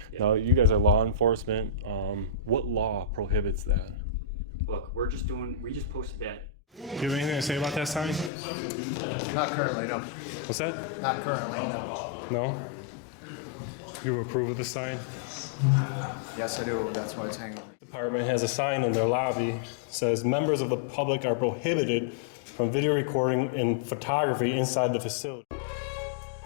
Yeah. Now, you guys are law enforcement. What law prohibits that? Look, we just posted that. Do you have anything to say about that sign? Not currently, no. What's that? Not currently, no. No? You approve of the sign? Yes, I do. That's why it's hanging. The department has a sign in their lobby that says members of the public are prohibited from video recording and photography inside the facility.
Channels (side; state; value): right; drops out; at 8.3 s